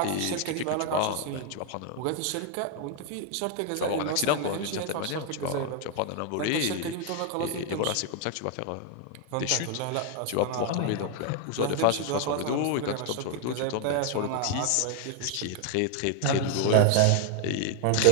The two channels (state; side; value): different; both; correlation 0.00